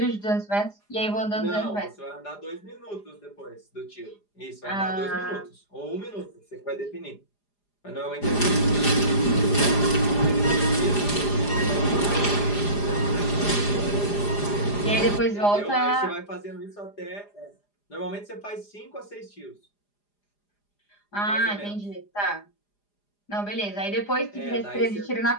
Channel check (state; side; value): late; right; 4.9 ms